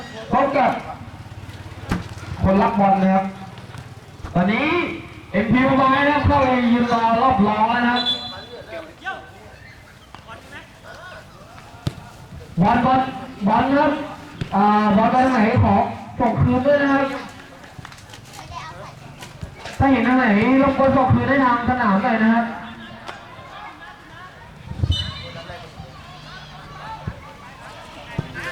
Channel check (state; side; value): identical; both; correlation 1.00